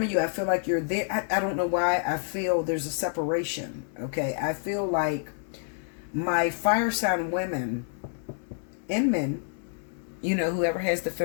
of you, I feel like you're there. I don't know why. I feel there's a separation. Okay. I feel like my fire sign women and men, you know, whoever has the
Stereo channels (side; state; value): right; silent; 59 dB below the other